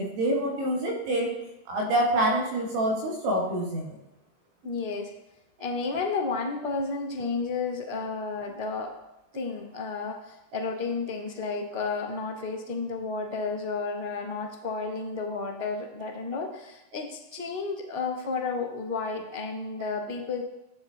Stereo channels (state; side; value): late; left; 22 ms